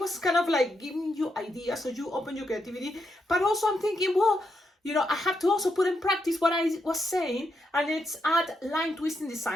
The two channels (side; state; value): both; normal; correlation 0.82